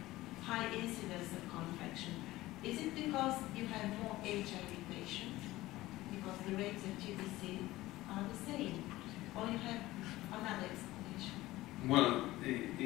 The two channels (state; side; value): quieter; right; 17.4 dB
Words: high incidence of co-infection? Is it because you have more HIV patients, because the rates of TBC are the same, or you have another explanation? Well,